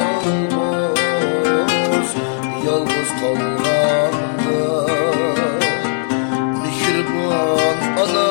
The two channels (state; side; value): silent; right; digital silence